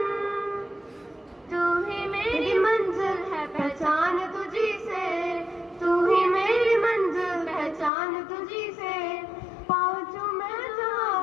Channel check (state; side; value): drops out; right; at 7.9 s